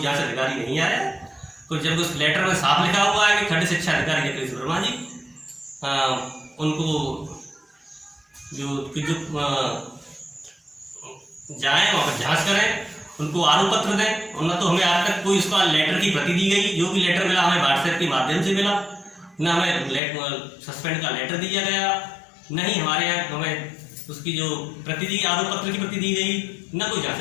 जांच अधिकारी नहीं आया। तो जब उस लेटर में साफ लिखा हुआ है कि खंड शिक्षा अधिकारी जगदीश वर्मा जी उनको जो जाएं और जांच करें, उनको आरोप पत्र दें, और न तो हमें आज तक कोई उसका लेटर की प्रति दी गई। जो भी लेटर मिला हमें व्हाट्सएप के माध्यम से मिला, न हमें सस्पेंड का लेटर दिया गया, नहीं हमारे यहाँ हमें उसकी जो प्रति दी आरोप पत्र की प्रति दी गई, न कोई जांच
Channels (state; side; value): drops out; right; at 20.0 s